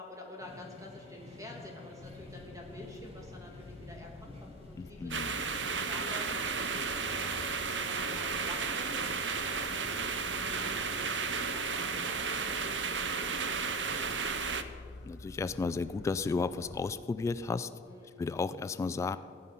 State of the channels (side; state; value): both; normal; correlation 0.24